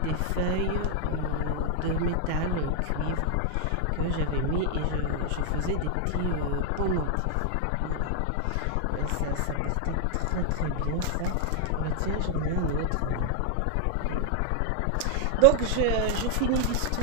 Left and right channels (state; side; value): different; both; correlation 0.00